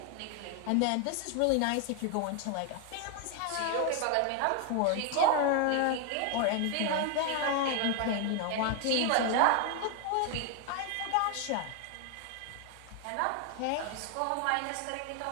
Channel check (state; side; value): different; both; correlation 0.01